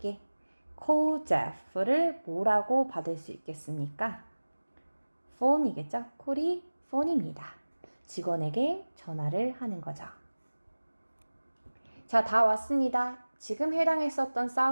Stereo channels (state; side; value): inverted; both; correlation -1.00